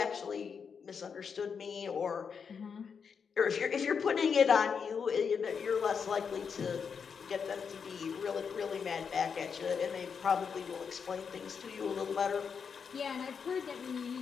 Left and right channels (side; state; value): right; quieter; 6.3 dB